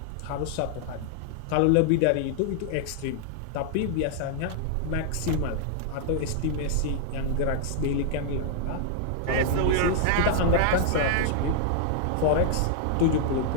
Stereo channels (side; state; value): both; different; correlation -0.01